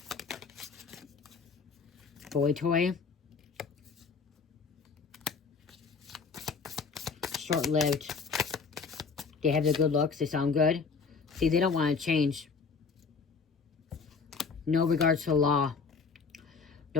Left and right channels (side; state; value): right; quieter; 5.1 dB